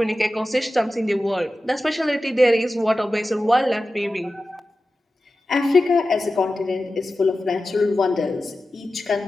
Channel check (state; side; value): normal; both; correlation 0.94